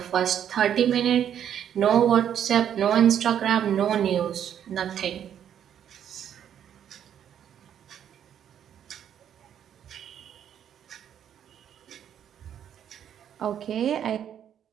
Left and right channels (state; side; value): quieter; left; 9.5 dB